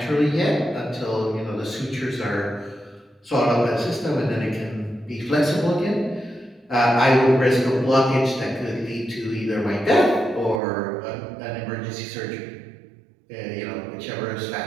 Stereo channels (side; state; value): left; drops out; at 10.6 s